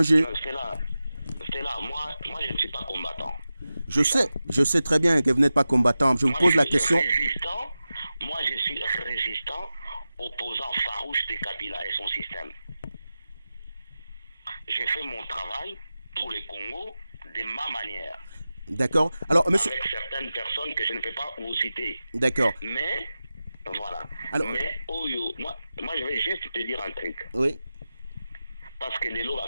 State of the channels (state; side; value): inverted; both; correlation -0.94